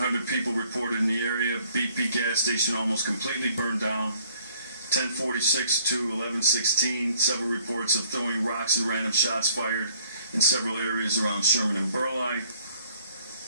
people reported in the area. BP gas station almost completely burned down. 10:46 to 11:16, several reports of throwing rocks and random shots fired in several areas around Sherman and Burleigh.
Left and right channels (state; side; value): inverted; both; correlation -0.61